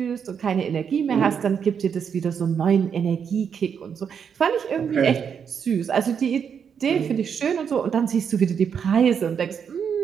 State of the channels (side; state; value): left; quieter; 7.2 dB